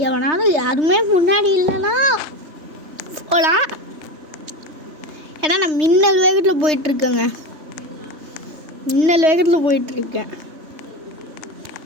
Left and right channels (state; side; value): late; left; 3.2 ms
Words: எவனாலும் யாருமே முன்னாடி இல்லைன்னா போகலாம். ஏன்னா நான் மின்னல் வேகத்தில் போயிட்டுருக்கேங்க. போயிட்டுருக்கேன்.